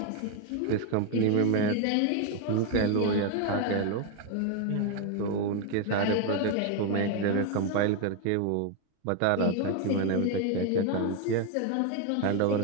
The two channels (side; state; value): both; different; correlation 0.01